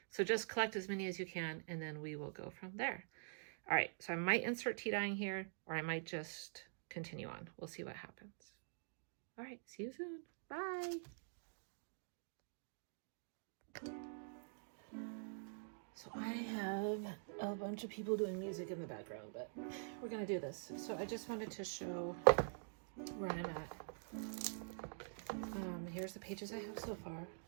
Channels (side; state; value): left; silent; digital silence